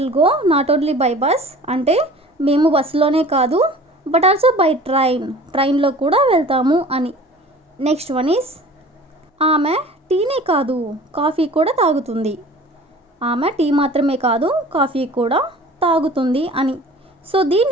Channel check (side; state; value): both; normal; correlation 0.44